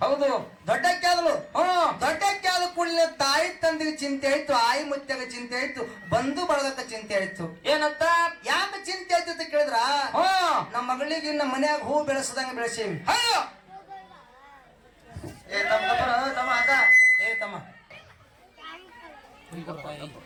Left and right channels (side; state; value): both; identical; correlation 1.00